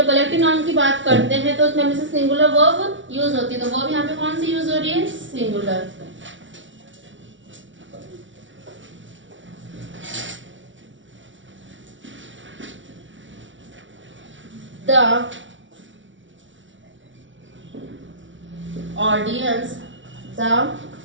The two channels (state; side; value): late; left; 0.56 ms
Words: collective noun की बात करते हैं तो उसमें हमेशा सिंगुलर वर्ब यूज होती है. तो वर्ब यहाँ पे कौन सी यूज हो रही है? Singular. The audience